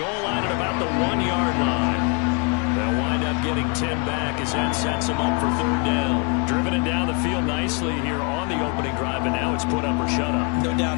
line at about the 1-yard line. They'll wind up getting 2 10 back as that sets them up for third down. Driven it down the field nicely here on the opening drive, and now it's put up or shut up. No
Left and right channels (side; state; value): right; quieter; 33.7 dB